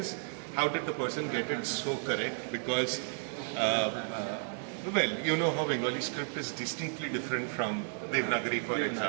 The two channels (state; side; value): silent; left; 56 dB below the other